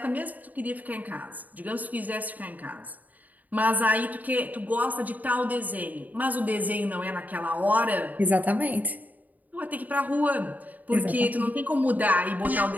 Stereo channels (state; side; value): late; left; 0.079 ms